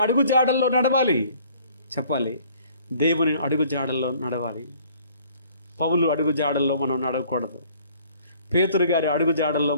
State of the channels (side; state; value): both; inverted; correlation -0.56